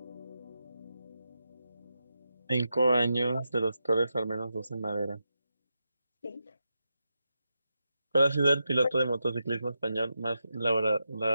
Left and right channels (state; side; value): inverted; both; correlation -0.88